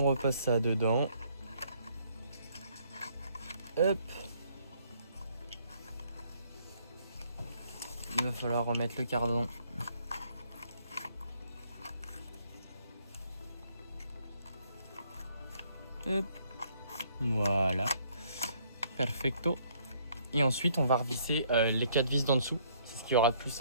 repasse ça dedans. Hop. Il va falloir remettre le cardan. Hop. Voilà. Perfecto. Et ensuite, on va revisser les 4 vis d'en dessous. C'est ce qui aura de plus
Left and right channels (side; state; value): both; inverted; correlation -0.65